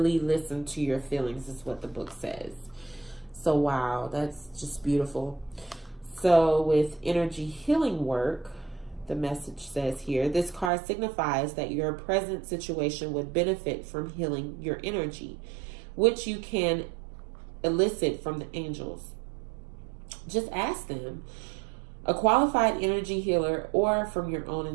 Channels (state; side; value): drops out; left; at 10.7 s